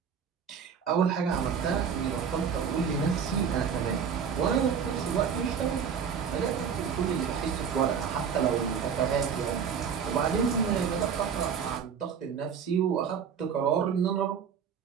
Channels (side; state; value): left; quieter; 7.1 dB